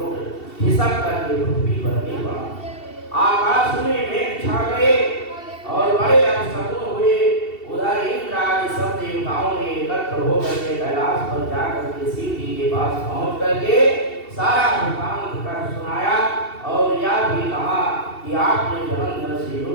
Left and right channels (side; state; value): right; late; 2.7 ms